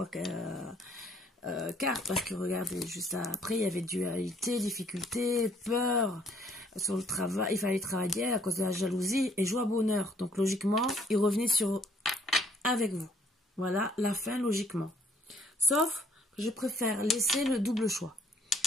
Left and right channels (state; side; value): normal; both; correlation 0.64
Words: cartes, parce que regardez, juste après, il y avait dualité, difficulté, peur, sur le travail, il fallait travailler à cause de la jalousie, et joie, bonheur. Donc logiquement, il revenait avec vous. Voilà, la fin logiquement. Sauf je préfère laisser le double choix.